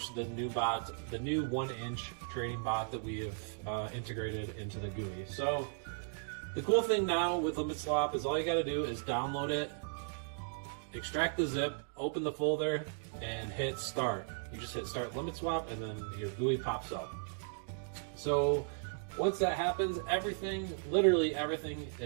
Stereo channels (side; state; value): left; silent; digital silence